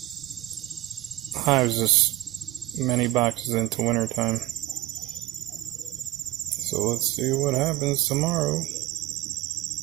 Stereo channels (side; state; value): left; quieter; 16.5 dB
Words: hives this many boxes into wintertime. So let's see what happens tomorrow.